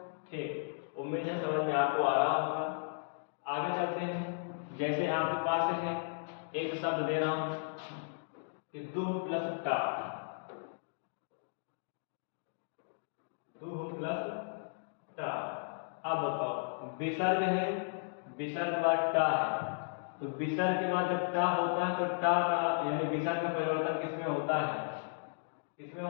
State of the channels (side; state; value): right; silent; digital silence